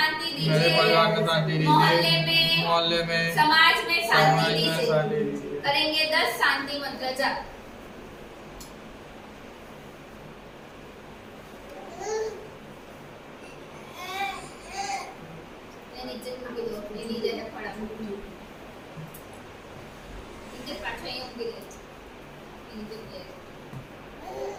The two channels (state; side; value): identical; both; correlation 1.00